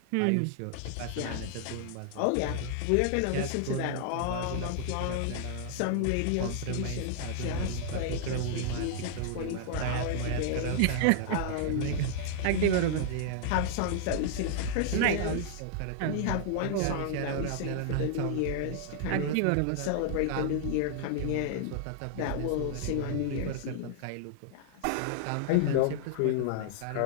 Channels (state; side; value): different; both; correlation -0.01